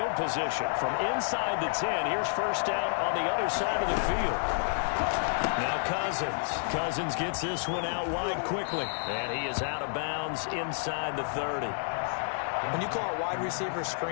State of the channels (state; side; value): silent; right; 58 dB below the other